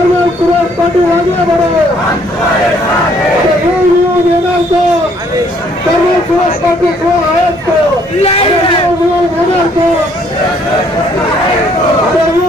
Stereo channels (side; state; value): both; normal; correlation 0.64